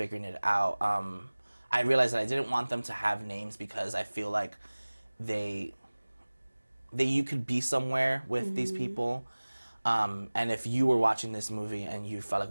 it out, I realized that I didn't want them to have names because I feel like you could be somewhere with these people, and if you were watching this movie and you felt like,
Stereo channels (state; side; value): inverted; both; correlation -1.00